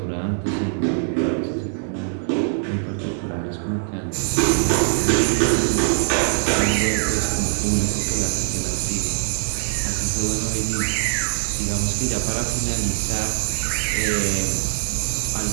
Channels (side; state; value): left; silent; digital silence